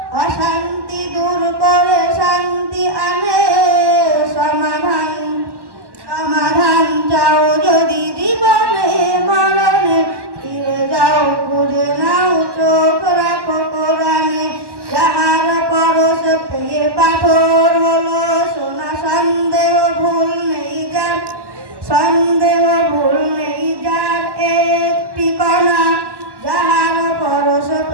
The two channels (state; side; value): late; left; 1.1 ms